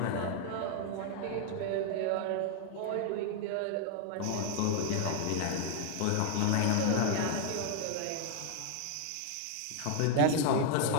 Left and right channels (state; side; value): different; both; correlation 0.00